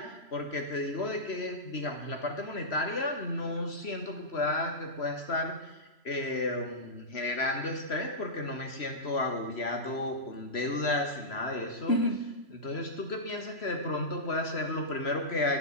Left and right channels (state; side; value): late; right; 3.0 ms